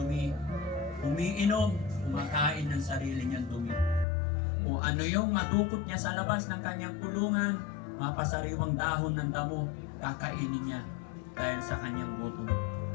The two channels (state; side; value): drops out; right; at 4.0 s